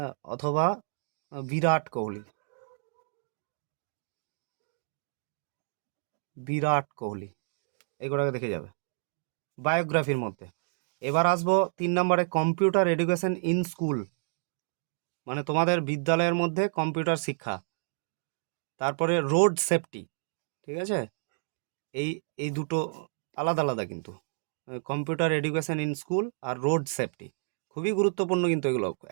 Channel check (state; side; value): silent; left; digital silence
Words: অথবা বিরাট কোহলি। বিরাট কোহলি এগুলোকে দেখে যাবে বায়োগ্রাফির মধ্যে। এবার আসবো 3 নম্বরে, কম্পিউটার এডুকেশন ইন স্কুল মানে তোমাদের বিদ্যালয়ের মধ্যে কম্পিউটার শিক্ষা। তারপরে রোড সেফটি, ঠিক আছে? এই এই দুটো আলাদা আলাদা কিন্তু, কম্পিউটার এডুকেশন ইন স্কুল আর রোড সেফটি খুবই গুরুত্বপূর্ণ কিন্তু, এগুলো